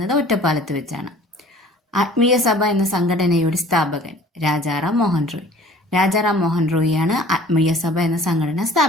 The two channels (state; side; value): normal; both; correlation 0.49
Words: ഒറ്റപ്പാലത്ത് വെച്ചാണ്. ആത്മീയ സഭ എന്ന സംഘടനയുടെ സ്ഥാപകൻ രാജാറാം മോഹൻ റോയ്. രാജാറാം മോഹൻ റോയിയാണ് ആത്മീയ സഭ എന്ന സംഘടന